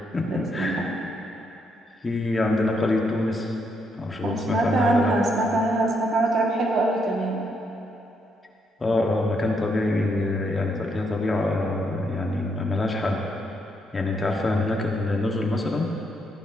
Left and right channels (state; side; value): normal; both; correlation 0.76